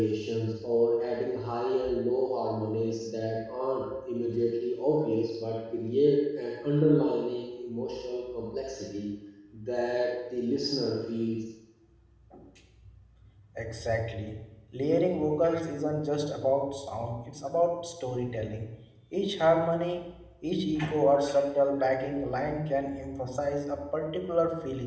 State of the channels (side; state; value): both; identical; correlation 1.00